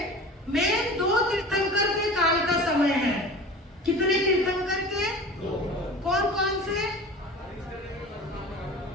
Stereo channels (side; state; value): both; normal; correlation 0.37